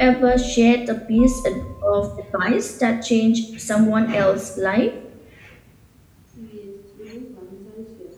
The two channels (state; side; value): identical; both; correlation 1.00